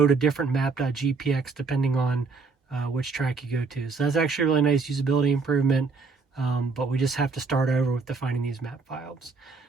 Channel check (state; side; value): quieter; left; 4.5 dB